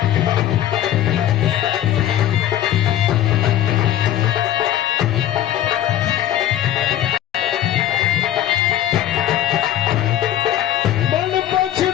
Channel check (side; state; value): right; quieter; 12.1 dB